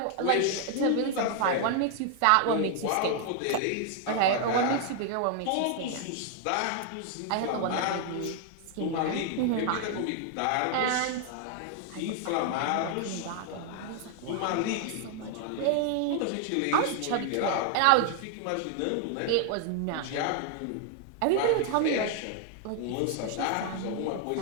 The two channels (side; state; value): both; different; correlation 0.00